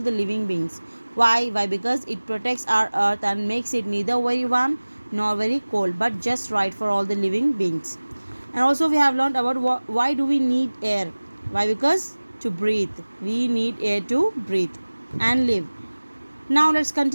living beings. Why? Because it protects our earth and makes it neither very warm nor very cold, but just right for all the living beings. And also we have learned about why do we need air. Why? Because to breathe, we need air to breathe and live. Now let's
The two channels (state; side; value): inverted; both; correlation -1.00